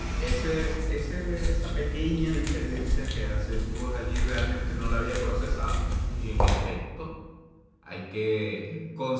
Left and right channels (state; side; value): identical; both; correlation 1.00